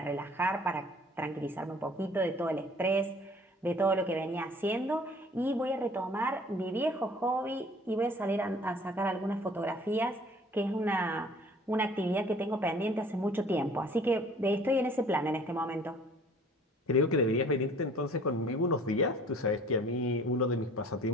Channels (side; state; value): both; normal; correlation 0.51